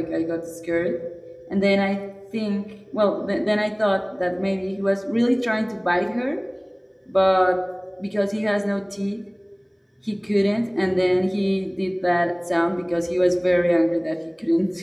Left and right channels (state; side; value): identical; both; correlation 1.00